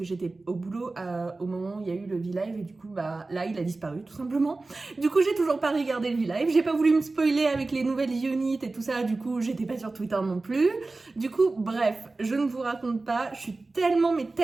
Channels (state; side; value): quieter; left; 3.4 dB